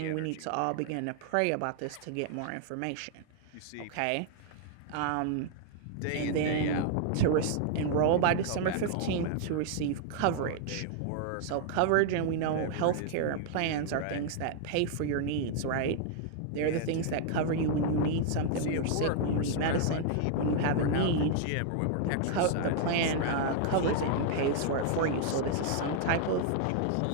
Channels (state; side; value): different; both; correlation -0.01